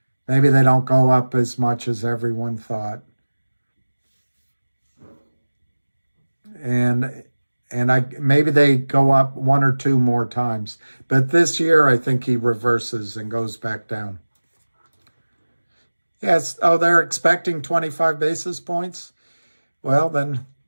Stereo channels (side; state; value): both; inverted; correlation -1.00